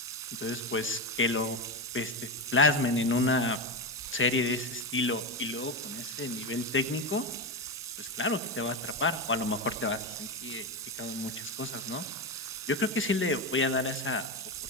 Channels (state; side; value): normal; both; correlation 0.14